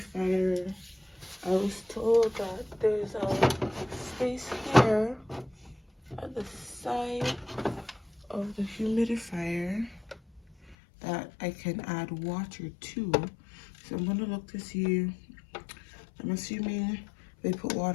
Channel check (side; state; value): right; drops out; at 10.8 s